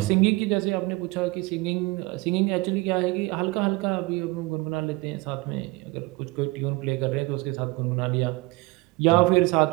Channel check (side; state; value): left; quieter; 22.9 dB